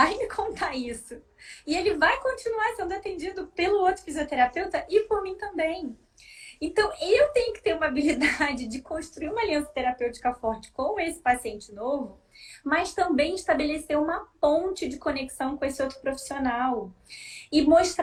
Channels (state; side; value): identical; both; correlation 1.00